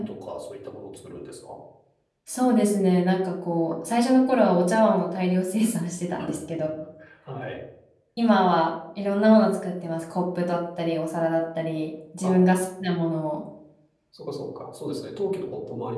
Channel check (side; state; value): both; identical; correlation 1.00